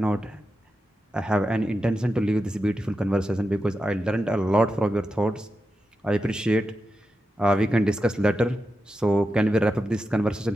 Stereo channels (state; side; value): normal; both; correlation 0.89